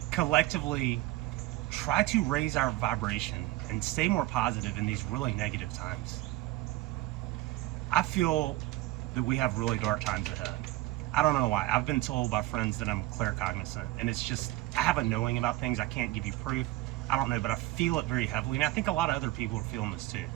collectively try to raise our vibration and stay more positive in these really negative times. I feel that we have really dark times ahead. I don't know why. I've been told by friends that I'm claircognizant, and it's just, I have a knowing about things. I can't give you proof. I don't know, but I feel it very heavily, and I think a lot of other people are feeling this too,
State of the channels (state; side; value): quieter; left; 17.7 dB